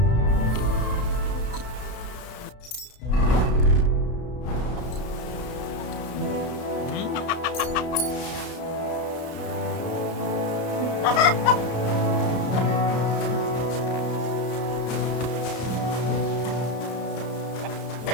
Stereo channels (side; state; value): right; late; 33 ms